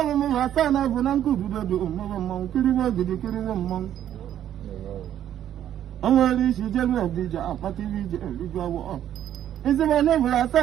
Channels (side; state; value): left; quieter; 10.9 dB